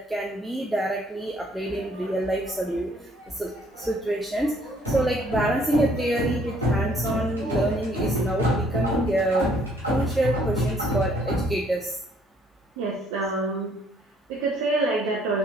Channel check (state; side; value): normal; both; correlation 0.63